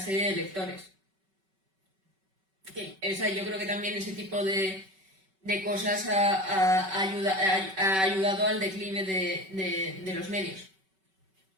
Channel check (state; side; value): late; left; 5.3 ms